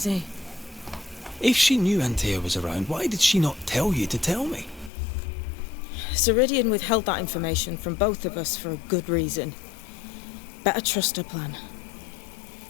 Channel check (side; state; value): right; drops out; at 4.9 s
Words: he? If she knew Antea was around, why did she not tell you to tell me? Siridean withheld that information from both of us for a good reason. Better trust her plan.